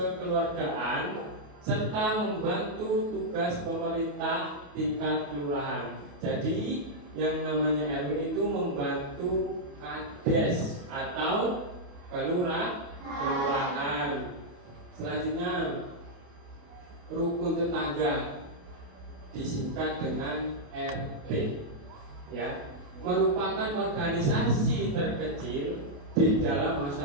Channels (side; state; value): left; late; 28 ms